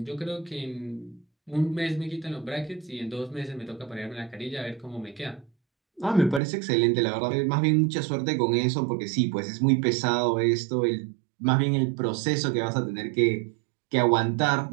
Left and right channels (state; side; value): drops out; left; at 6.4 s